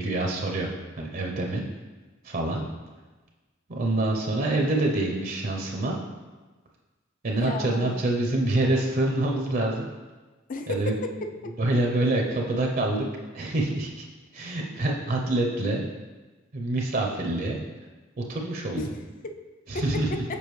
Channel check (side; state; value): both; normal; correlation 0.58